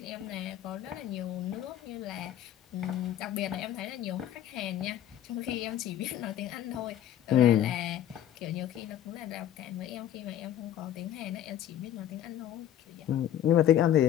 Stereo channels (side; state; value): right; quieter; 11.1 dB